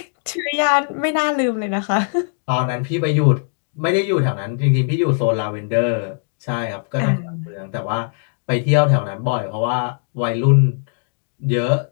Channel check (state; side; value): silent; right; digital silence